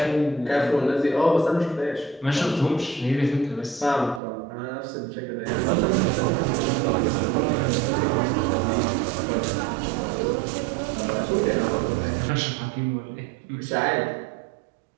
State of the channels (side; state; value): left; drops out; at 4.2 s